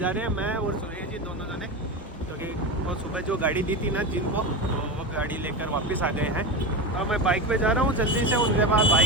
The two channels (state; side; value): normal; both; correlation 0.19